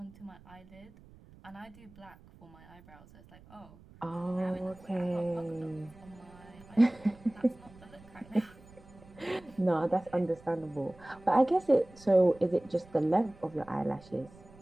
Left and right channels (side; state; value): right; noise; rumble, 23 dB below the sound